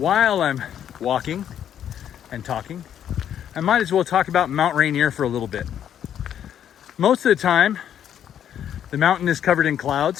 I'm walking and talking, I might as well talk about Mount Rainier for a little bit. Most of the time, the mountain is covered in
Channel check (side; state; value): right; quieter; 9.8 dB